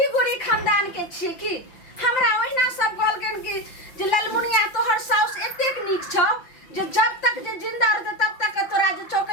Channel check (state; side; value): late; right; 5.8 ms